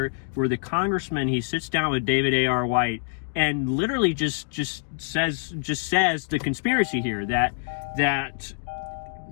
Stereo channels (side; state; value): right; silent; digital silence